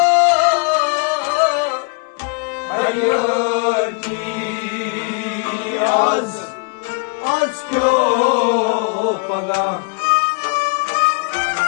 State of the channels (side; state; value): right; quieter; 34.2 dB